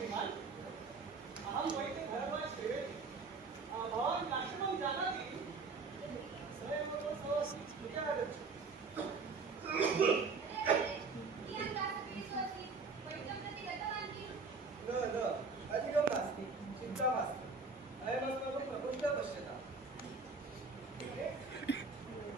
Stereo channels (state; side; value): quieter; left; 4.4 dB